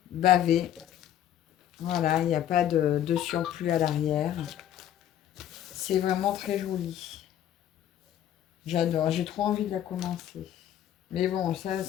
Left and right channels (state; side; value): quieter; right; 11.0 dB